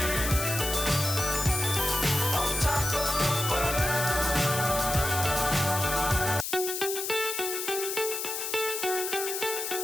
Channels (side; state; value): left; noise; hiss, 3 dB below the sound